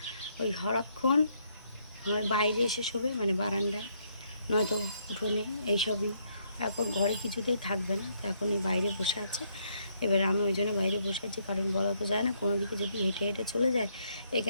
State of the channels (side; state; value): both; inverted; correlation -0.72